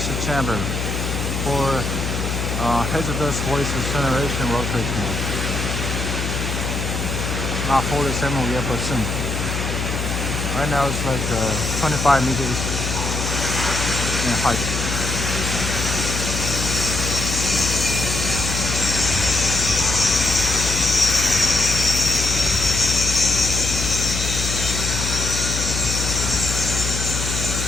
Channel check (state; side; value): noise; left; hum, 3 dB below the sound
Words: chamber for hazardous waste incineration rotary kiln. Not 47 yet, but soon. Right now it's like 25 meters in height.